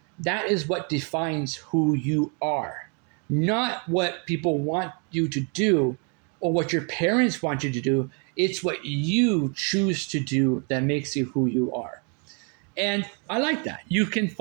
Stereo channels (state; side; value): quieter; left; 37.6 dB